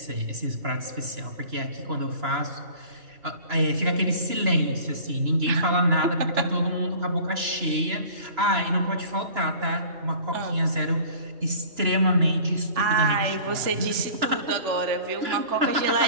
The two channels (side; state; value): left; late; 2.9 ms